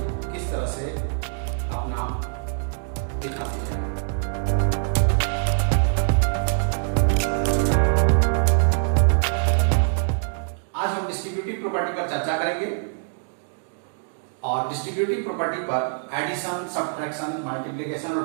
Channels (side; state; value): left; silent; digital silence